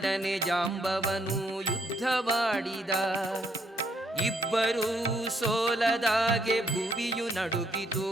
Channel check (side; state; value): both; normal; correlation 0.71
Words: ಜಾಂಬವನು ಯುದ್ಧವಾಡಿದ. ಇಬ್ಬರೂ ಸೋಲದಾಗೆ ಭುವಿಯು ನಡುಗಿತು,